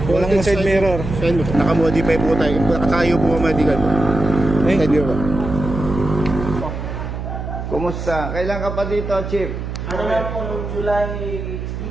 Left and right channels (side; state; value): right; noise; hum, 6 dB below the sound